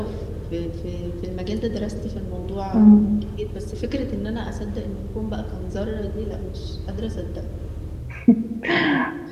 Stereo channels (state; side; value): identical; both; correlation 1.00